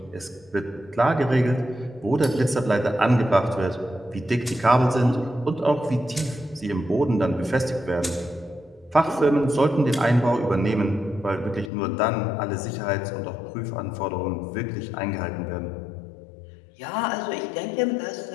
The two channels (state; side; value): drops out; right; at 11.7 s